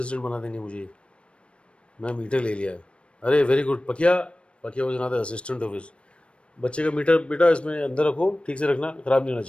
बना देंगे मुझे. मैं मीटर ले लिया. अरे very good Pakiya. Pakiya was not the assistant of his. बच्चे का मीटर बेटा इसमें अंदर रखो, ठीक से रखना, ख़राब नहीं होना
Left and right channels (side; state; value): right; late; 0.059 ms